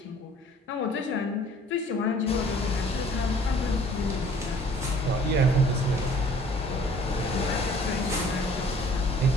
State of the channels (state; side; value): normal; both; correlation 0.53